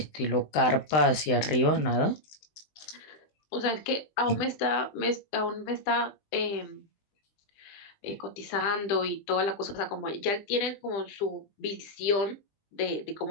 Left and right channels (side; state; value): right; late; 20 ms